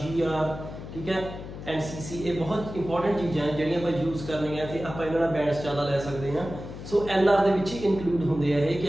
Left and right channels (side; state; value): left; noise; hum, 11 dB below the sound